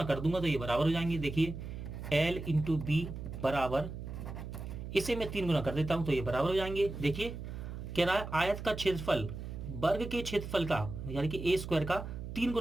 कर दूंगा तो ये बराबर हो जाएंगे। देखिए एल इंटू बी बराबर, इसे मैं 3 गुना कर देता हूं तो ये बराबर हो जाएंगे। देखिए कह रहा है आयत का क्षेत्रफल वर्ग के क्षेत्रफल का यानी कि ए स्क्वायर का 3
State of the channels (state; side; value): noise; right; hum, 8 dB below the sound